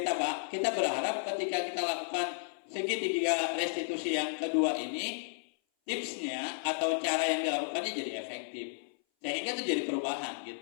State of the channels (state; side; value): silent; right; 56 dB below the other